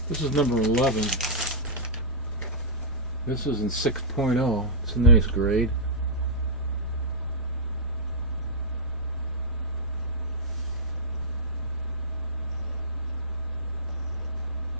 This is number 11. This is in 6.0. It's a nice grade.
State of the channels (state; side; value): normal; both; correlation -0.13